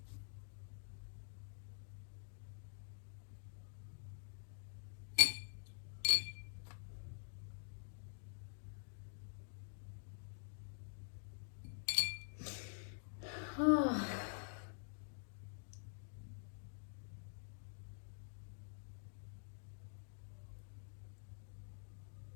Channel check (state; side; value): silent; right; digital silence